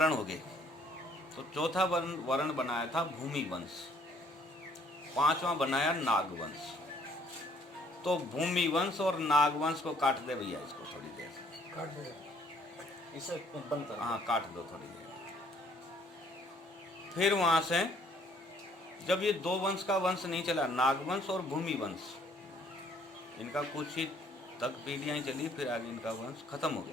हो गए। तो चौथा वर्ण बनाया था भूमि वंश, 5वां बनाया नागवंश। तो भूमि वंश और नागवंश को काट दे भैया, इसको थोड़ी देर काट दे, इसे बंद कर। हाँ, काट दो थोड़ी देर। फिर वहां से जब ये 2 वंश का वंश नहीं चला, नागवंश और भूमि वंश, इनका कुछ ही तक पीढ़ियां चली, फिर आगे इनका वंश खत्म हो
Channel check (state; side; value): normal; both; correlation 0.62